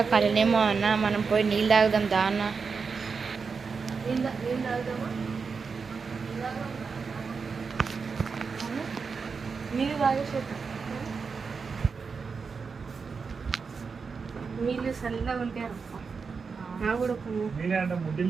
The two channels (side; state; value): left; quieter; 5.2 dB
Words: కలనేమో అన్న, మనం పోయి నీళ్ళు తాగుదాం దా అన్న. నీళ్ళు తాగేసే, నీళ్ళు చల్లగా ఉంటాయి. నాకు కూడా నీళ్ళే అంటే